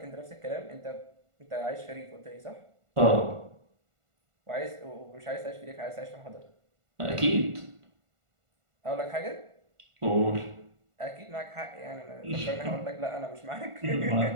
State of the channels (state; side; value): late; left; 1.4 ms